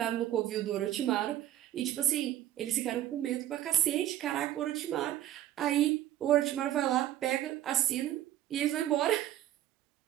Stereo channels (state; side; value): quieter; left; 12.9 dB